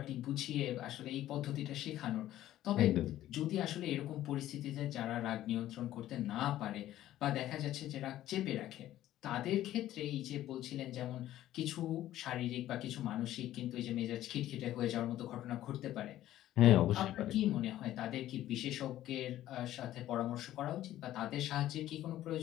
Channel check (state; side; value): quieter; right; 13.5 dB